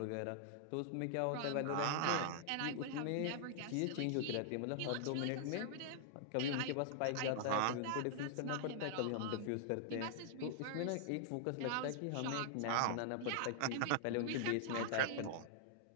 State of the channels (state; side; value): different; both; correlation -0.01